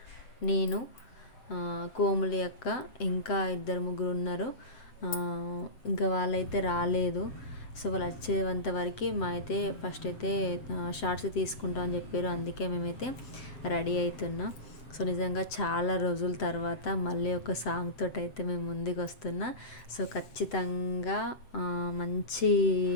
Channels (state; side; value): late; right; 7.8 ms